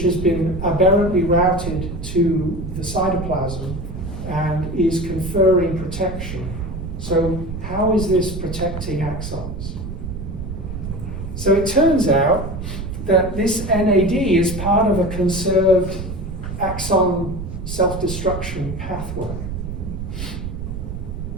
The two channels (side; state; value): right; noise; rumble, 7 dB below the sound